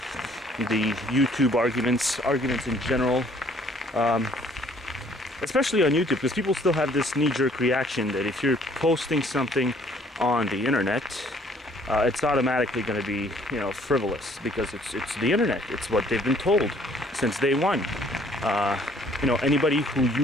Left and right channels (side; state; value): both; normal; correlation 0.60